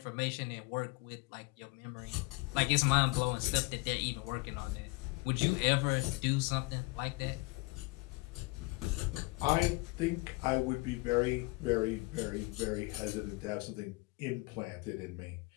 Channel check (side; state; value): right; quieter; 25.5 dB